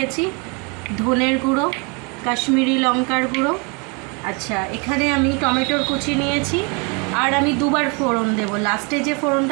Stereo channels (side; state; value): left; quieter; 32.2 dB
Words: ধনের গুঁড়ো, কাশ্মীরি লঙ্কার গুঁড়ো। আচ্ছা, এখানে আমি টমেটোর কুচি নিয়েছি আর আমি দুবার ফোড়ন দেবো। লাস্টে যে